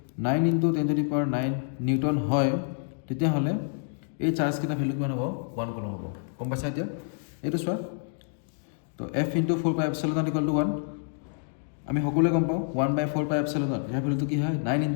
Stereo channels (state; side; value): silent; right; digital silence